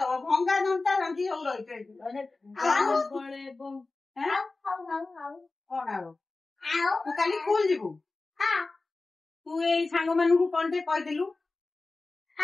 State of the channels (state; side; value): quieter; right; 3.5 dB